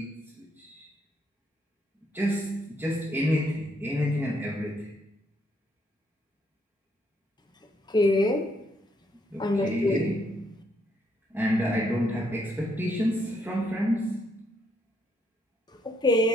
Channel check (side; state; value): both; normal; correlation 0.74